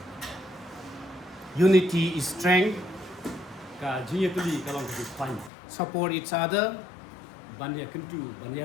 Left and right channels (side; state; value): right; drops out; at 5.5 s